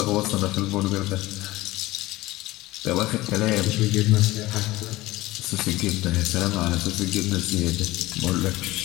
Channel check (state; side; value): quieter; right; 18.6 dB